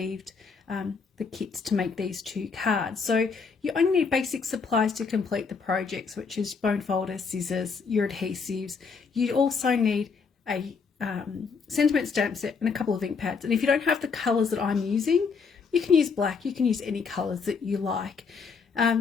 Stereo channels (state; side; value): quieter; right; 5.3 dB